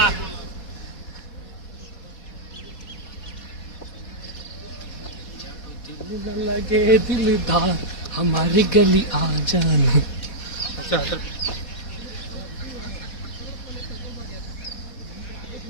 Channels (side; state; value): right; late; 4.2 ms